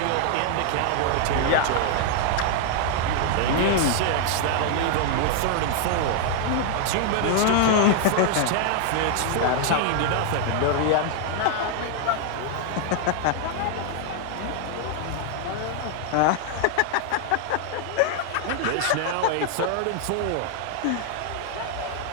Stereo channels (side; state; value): both; different; correlation 0.00